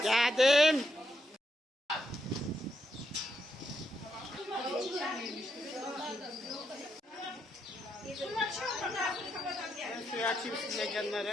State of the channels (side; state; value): both; normal; correlation 0.80